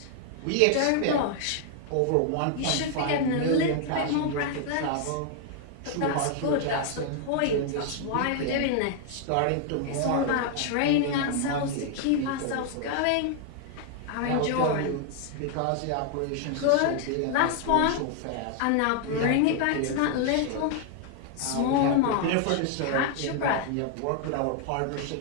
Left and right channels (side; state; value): both; different; correlation 0.00